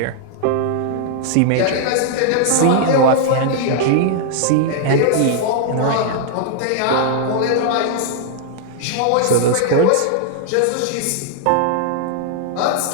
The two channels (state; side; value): different; both; correlation -0.01